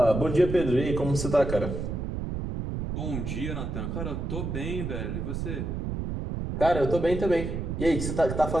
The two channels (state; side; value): noise; right; rumble, 4 dB below the sound